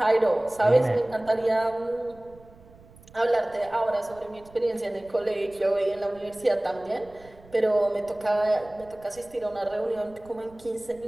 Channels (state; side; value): noise; right; rumble, 24 dB below the sound